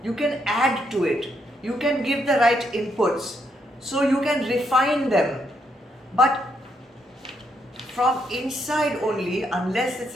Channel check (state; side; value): normal; both; correlation 0.77